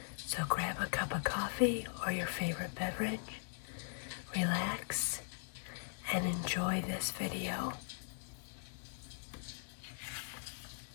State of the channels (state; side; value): silent; right; digital silence